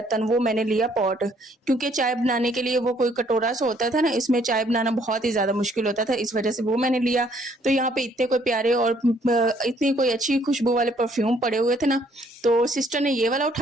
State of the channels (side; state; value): both; normal; correlation 0.65